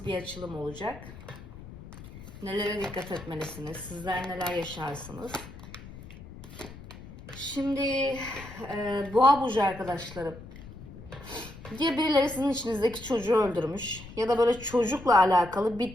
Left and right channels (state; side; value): noise; left; rumble, 15 dB below the sound